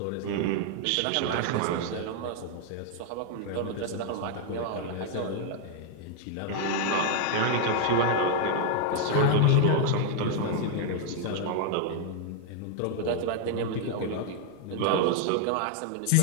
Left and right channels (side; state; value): both; different; correlation 0.00